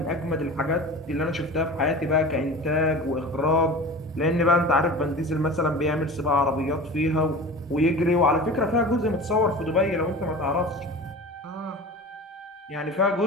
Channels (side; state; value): both; normal; correlation 0.35